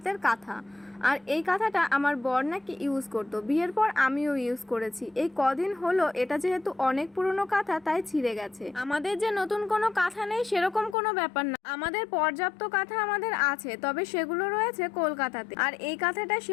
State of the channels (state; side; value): drops out; right; at 11.0 s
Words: কাঁথা, আর এই কাঁথাটা আমার বর নাকি ইউজ করতো। বিয়ের পর আমিও ইউজ করেছি। এই কদিন হলো এটা যেহেতু অনেক পুরনো কাঁথা তাই ছিঁড়ে গেছে। আমাদের যে নতুন কোনো কাঁথা নেই সেরকম কোনো ব্যাপার না, আমাদের পর্যাপ্ত কাঁথা আমাদের আছে, তবে সেগুলো রয়েছে কলকাতাতে। আর এই কাঁথাটা